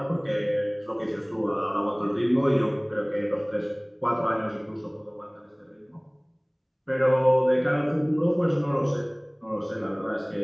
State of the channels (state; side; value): identical; both; correlation 1.00